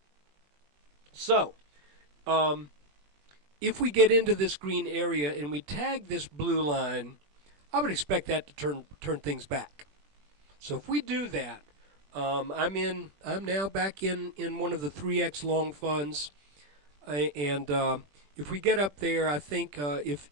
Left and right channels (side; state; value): left; late; 21 ms